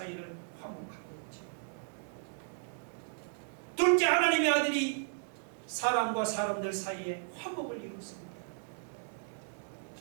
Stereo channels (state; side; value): silent; left; digital silence